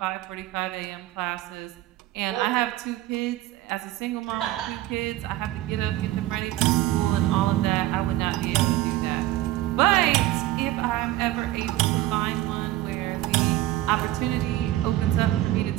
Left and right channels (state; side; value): quieter; left; 15.7 dB